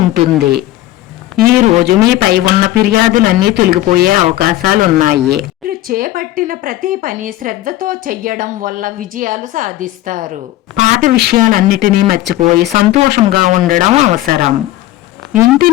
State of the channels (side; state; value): right; quieter; 15.4 dB